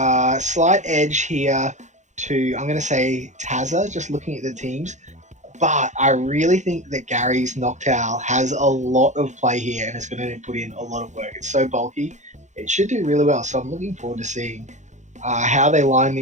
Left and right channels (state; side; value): late; left; 0.35 ms